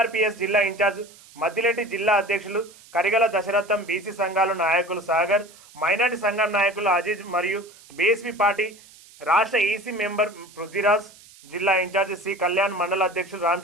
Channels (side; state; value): right; noise; hiss, 23 dB below the sound